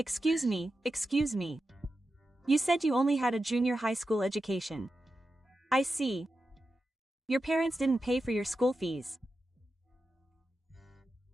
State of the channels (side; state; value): both; normal; correlation 0.91